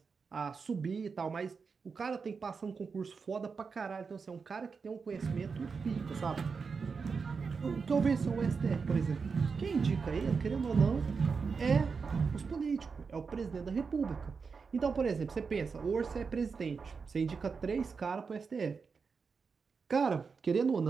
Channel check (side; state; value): left; quieter; 5.2 dB